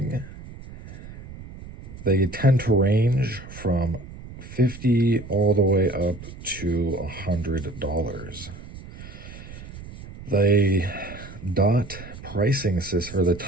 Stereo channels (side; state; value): right; noise; rumble, 15 dB below the sound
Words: they tend to range from $50 all the way up to $100. The dot pricing system, or the